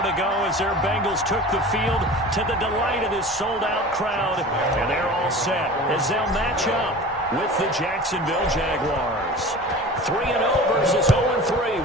ago as their Bengals took the field to the delight of this sold-out crowd. And they're all set as they'll match up with the Jacksonville Jaguars. 3-0 versus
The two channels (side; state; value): both; normal; correlation 0.38